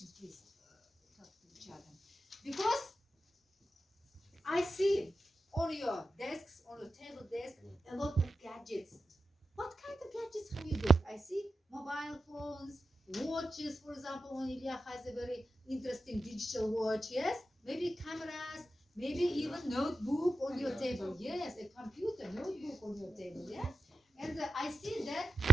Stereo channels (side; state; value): both; normal; correlation 0.92